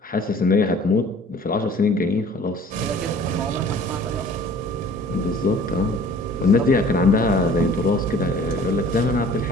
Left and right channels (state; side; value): normal; both; correlation 0.49